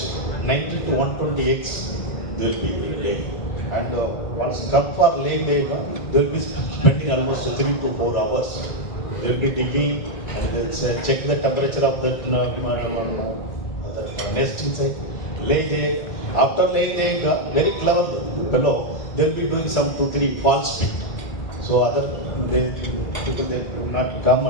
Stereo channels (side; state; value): right; late; 1.6 ms